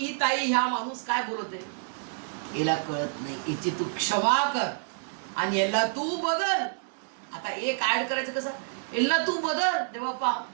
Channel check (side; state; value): left; silent; digital silence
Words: ताई, ह्या माणूस काय बोलते, याला कळत नाही, याची तू क्षमा कर आणि याला तू बदल. आता एक ऍड करायचं कसं? यांना तू बदल, देवापा